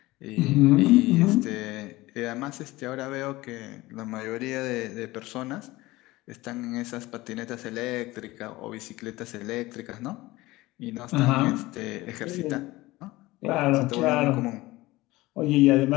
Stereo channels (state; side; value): quieter; right; 19.4 dB